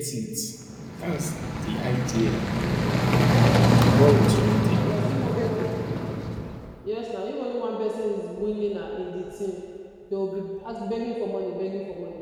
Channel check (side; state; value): both; identical; correlation 1.00